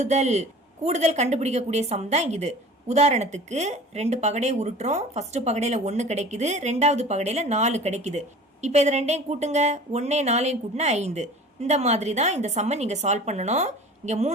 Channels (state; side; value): normal; both; correlation 0.42